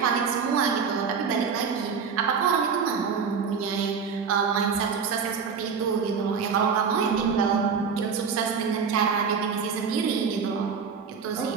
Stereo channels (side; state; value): left; quieter; 6.1 dB